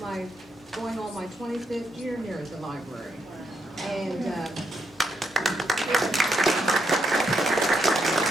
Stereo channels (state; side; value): normal; both; correlation 0.80